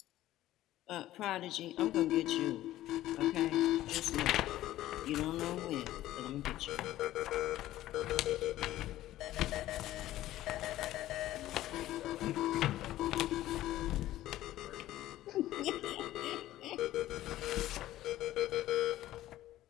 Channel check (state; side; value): quieter; right; 14.6 dB